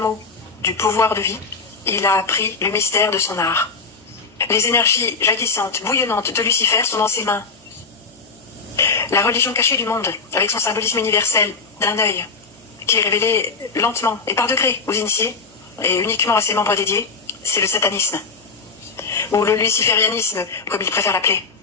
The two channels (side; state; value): right; quieter; 4.5 dB